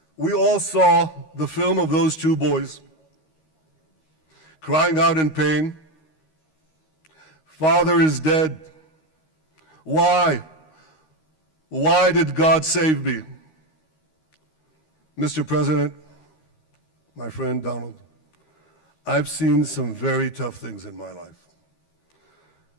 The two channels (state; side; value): late; right; 13 ms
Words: We all saw the film of those 2 boys crying out in pain, "Father is dead. Why? Why did God save me?" Mr. President, my friend Donald, I've seen some very tough things in my life.